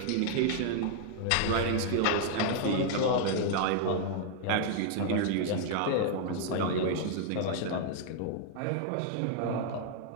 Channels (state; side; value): different; both; correlation -0.01